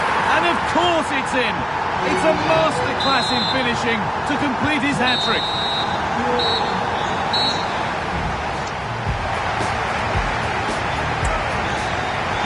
And of course it's in! It's a masterclass in finishing to complete his hat-trick.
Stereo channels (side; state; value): both; identical; correlation 1.00